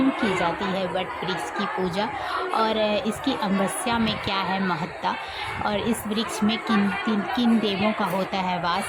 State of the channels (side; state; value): both; identical; correlation 1.00